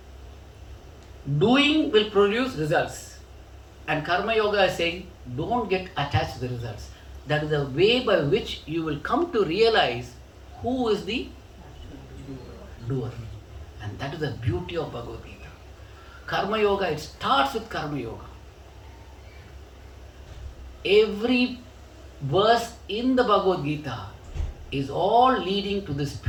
Doing will produce results. And Karma Yoga is saying, don't get attached to the results. That is the way by which you will come to realize who is the doer. And that is the beauty of Bhagavad Gita. Karma Yoga, it starts with Karma Yoga. Every verse in the Bhagavad Gita is all leading to this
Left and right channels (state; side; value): identical; both; correlation 1.00